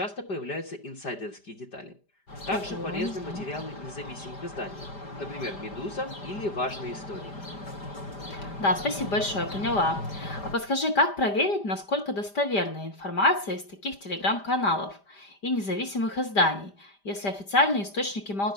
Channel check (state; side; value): late; right; 5.0 ms